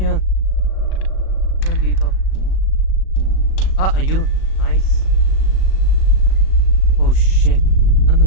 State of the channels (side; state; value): right; late; 37 ms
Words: Ano dito? Ayun. Nice. Oh shit.